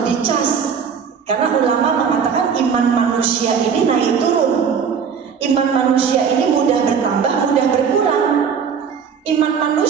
dicas, karena ulama mengatakan iman manusia ini naik turun. Iman manusia ini mudah bertambah, mudah berkurang. Iman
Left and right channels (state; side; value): quieter; left; 6.7 dB